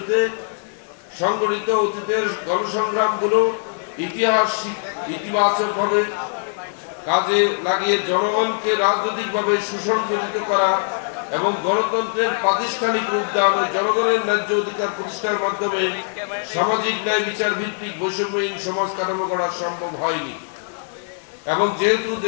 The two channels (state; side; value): silent; right; 65 dB below the other